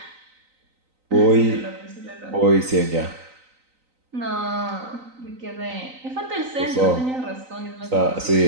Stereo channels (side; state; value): left; late; 3.9 ms